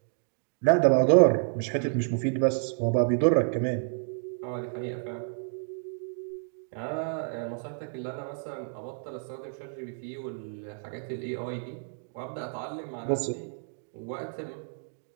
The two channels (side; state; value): left; silent; digital silence